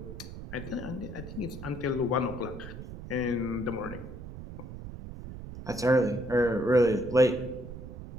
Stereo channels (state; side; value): noise; right; rumble, 11 dB below the sound